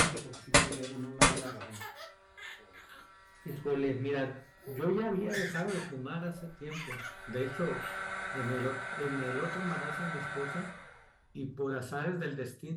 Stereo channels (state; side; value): identical; both; correlation 1.00